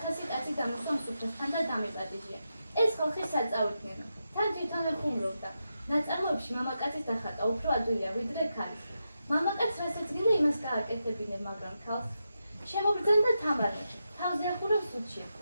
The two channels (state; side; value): inverted; both; correlation -0.87